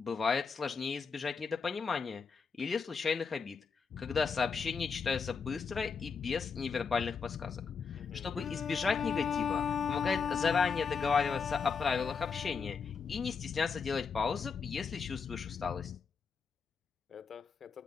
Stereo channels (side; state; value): right; quieter; 5.6 dB